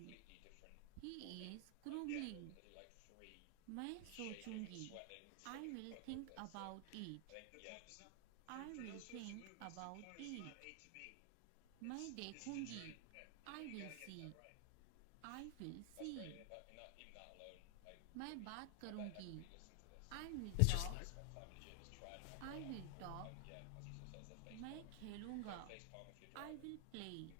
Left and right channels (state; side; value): different; both; correlation 0.00